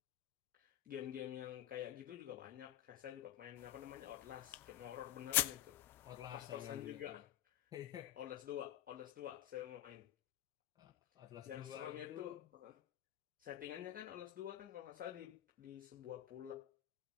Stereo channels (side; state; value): right; quieter; 13.1 dB